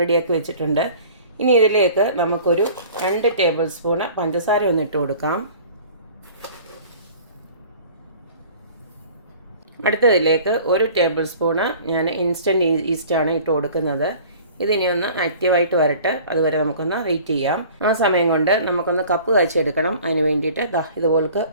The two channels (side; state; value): both; inverted; correlation -0.46